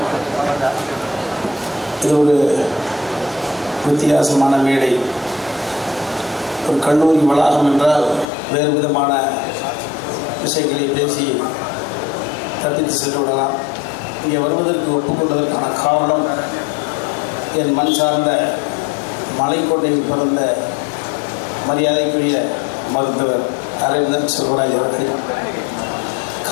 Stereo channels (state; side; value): drops out; right; at 8.2 s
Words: இது ஒரு வித்தியாசமான மேடை. ஒரு கல்லூரி வளாகம் என்றால் வேறு விதமான விஷயங்களை பேசி தப்பித்து சென்று விடலாம். இங்கே வருவதற்கு ஒப்புக்கொண்டதற்கான காரணம் என் மண் சார்ந்த மலைக்கோட்டையில் பிறந்த மரியாதைக்குரிய மருத்துவர் அரவிந்தன் செல்வராஜ் அவர்கள்.